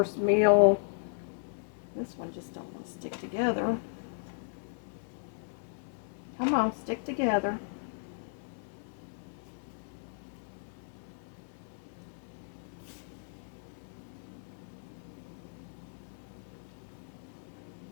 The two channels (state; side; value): silent; right; digital silence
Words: meal? This one just don't want to stick together. Come on, stick together.